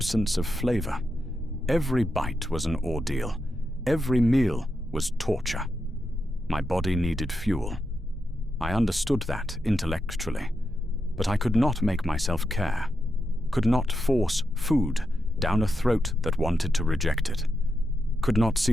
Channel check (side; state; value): both; normal; correlation 0.86